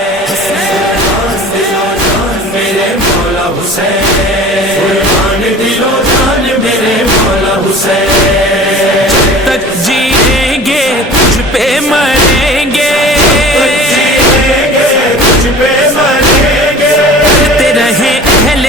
कुर्बान दिलो जान मेरे मौला हुसैन कुर्बान दिलो जान मेरे मौला हुसैन तक जिएंगे तुझ पे मरेंगे जिएंगे तुझ पे मरेंगे करते रहे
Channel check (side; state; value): both; normal; correlation 0.41